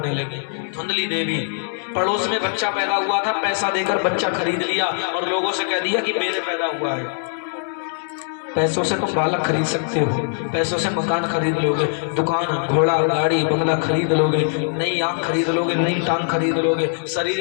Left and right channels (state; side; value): silent; right; 65 dB below the other